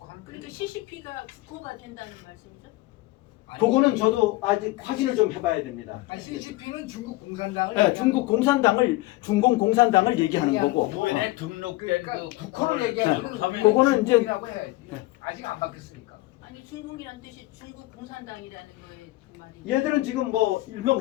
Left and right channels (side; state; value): right; quieter; 19.7 dB